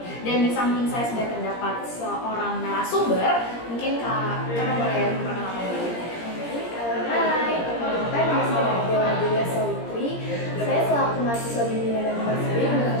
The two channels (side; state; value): right; late; 17 ms